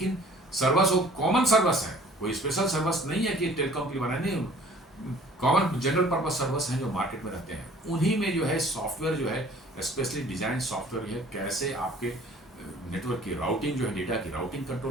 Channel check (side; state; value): both; normal; correlation 0.52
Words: सर्वर्स वो कॉमन सर्वर्स है, कोई स्पेशल सर्वर्स नहीं है कि टेलीकॉम के लिए बनाए, नहीं, कॉमन जनरल पर्पस सर्वर्स हैं जो मार्केट में रहते हैं। उन्हीं में जो है सॉफ्टवेयर जो है स्पेशली डिजाइन सॉफ्टवेयर है, कैसे आपके नेटवर्क की राउटिंग जो है, डेटा की राउटिंग